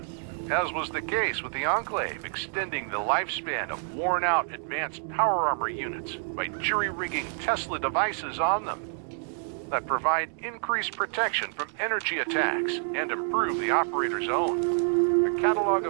as was the case with the Enclave, extending the lifespan of worn-out advanced power armor units by jury-rigging Tesla devices on them that provide increased protection from energy attacks and improve the operator's own. The catalog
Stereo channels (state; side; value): silent; left; 59 dB below the other